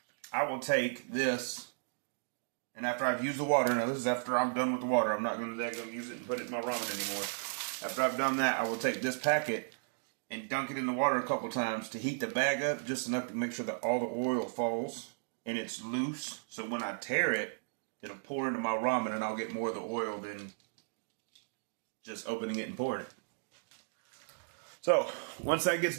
I will take this. And after I've used the water, now this is after I'm done with the water. I'm not going to use it and put it in my ramen anymore. After I've done that, I will take this packet and dunk it in the water a couple times to heat the bag up just enough to make sure that all the oil falls and it's loose. So when I tear it, it'll pour into my ramen and I'll get more of the oil than just opening it and pouring it. So once that gets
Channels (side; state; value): left; silent; digital silence